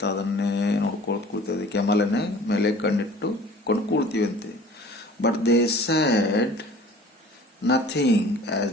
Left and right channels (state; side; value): normal; both; correlation 0.47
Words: ಅದನ್ನೇ ನೋಡ್ಕೊಳ್ತಾ ಕೂಳ್ತದೆ. ಕೆಮಲನ್ನೇ ಮೇಲೆ ಕಣ್ಣಿಟ್ಟು ಕೊಂಡು ಕೂಳ್ತೀವಿ ಅಂತೆ. But they said nothing